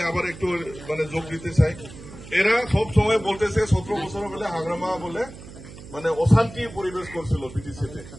আবার একটু যোগ দিতে চাই, এরা সব সময় বলতেছে 17 বছর বলে হাগ্রামা বলে অশান্তি পরিবেশ করছিল বিটিসিতে,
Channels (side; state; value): right; noise; hum, 16 dB below the sound